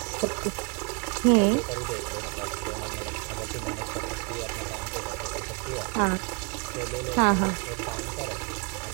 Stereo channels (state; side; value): quieter; left; 34.5 dB